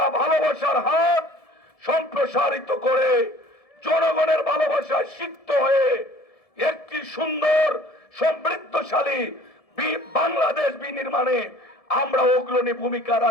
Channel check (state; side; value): late; right; 1.7 ms